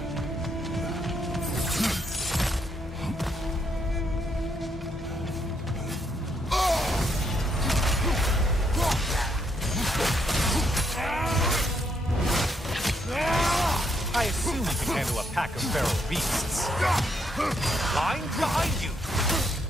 I assume you can handle a pack of feral beasts. Line behind you!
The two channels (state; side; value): normal; both; correlation 0.75